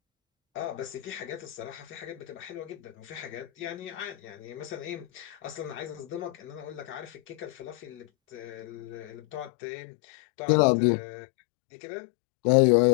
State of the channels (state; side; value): drops out; right; at 9.5 s